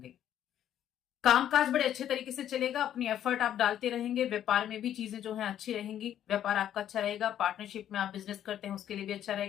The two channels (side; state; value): right; quieter; 10.8 dB